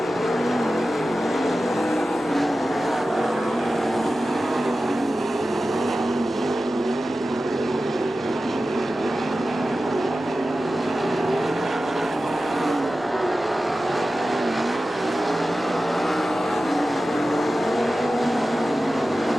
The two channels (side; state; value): both; normal; correlation 0.94